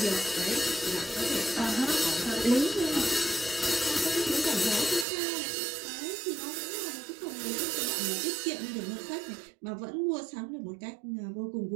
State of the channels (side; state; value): left; drops out; at 5.1 s